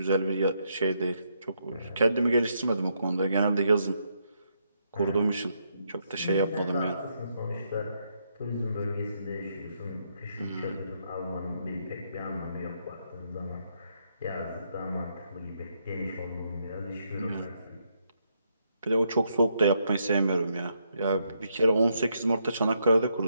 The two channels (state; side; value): inverted; both; correlation -0.77